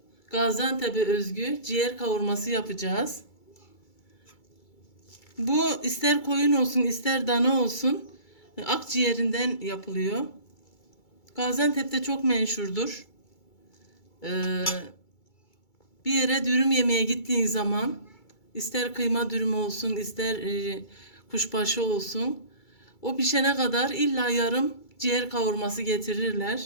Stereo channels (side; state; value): right; late; 2.3 ms